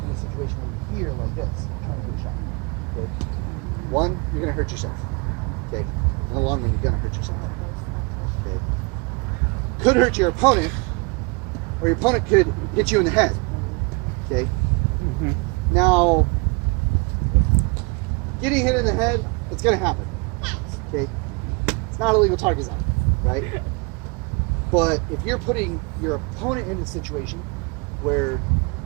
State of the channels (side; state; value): left; quieter; 30.3 dB